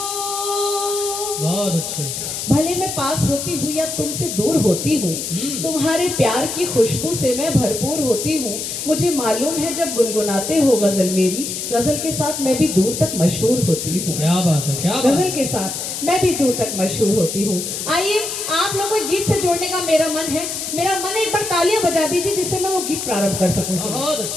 होती हूँ, तुम्हारे प्यार की खुशबू से मैं भरपूर होती हूँ। मुझे मालूम है जब गुनगुनाते हो गजल मेरी, गजल के साथ मैं भी दूर तक मशहूर होती हूँ। क्या बात है, क्या बात गजल के साथ मैं भी दूर तक मशहूर होती हूँ। आइए आप लोगों को गीत से जोड़ने का मेरा मन है। मेरा मन है एक बार तालियां बजा दीजिए जिससे मैं वो गीत प्रारंभ कर सकूं। बहुत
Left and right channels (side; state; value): left; noise; hiss, 5 dB below the sound